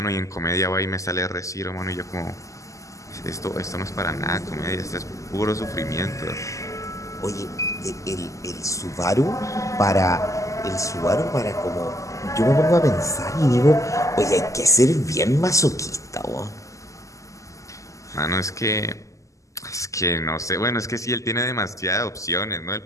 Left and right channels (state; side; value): late; right; 0.16 ms